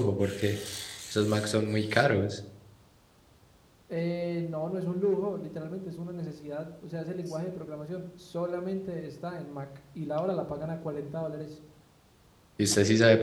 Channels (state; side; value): identical; both; correlation 1.00